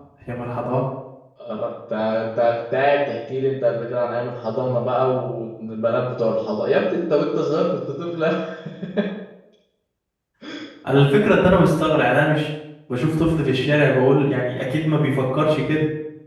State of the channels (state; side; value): identical; both; correlation 1.00